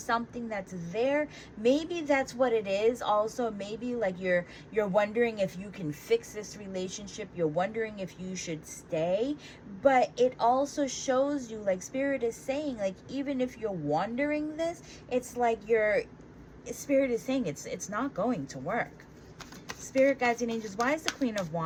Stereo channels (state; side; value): identical; both; correlation 1.00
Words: that's there. Maybe that's what it is. Also, maybe like you're wondering if you can fix this relationship. You're wondering if you should stay. But it also shows you, like, Spirit is saying, like, even if you're wondering this, it's like your Spirit is saying it's not going to work. Spirit, guides, and angels, why is the Queen of